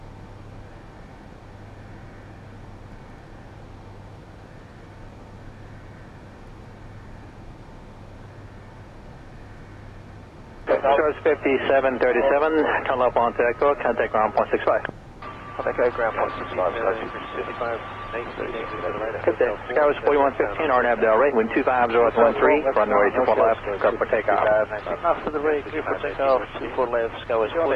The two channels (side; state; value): both; identical; correlation 1.00